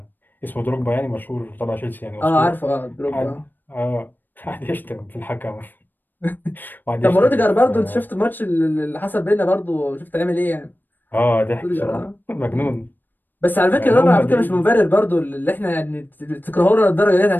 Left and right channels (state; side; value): late; right; 0.091 ms